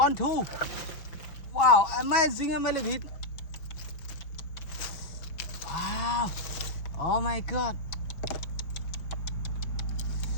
2. Wow, amazing millipede. Wow, oh my god.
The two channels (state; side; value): late; right; 5.6 ms